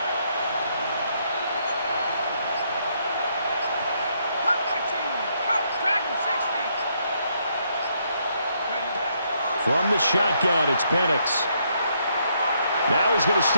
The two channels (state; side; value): inverted; both; correlation -0.73